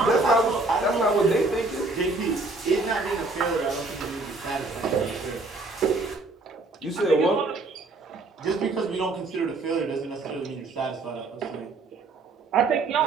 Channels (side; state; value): left; quieter; 3.3 dB